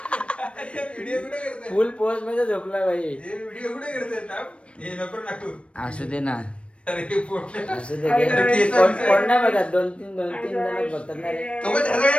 फुल पोस्ट मध्ये झोपला भाई. असू दे ना, असू दे. कोण नाही बघा, 2-3 जण बघतात ना रे.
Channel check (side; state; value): right; late; 0.060 ms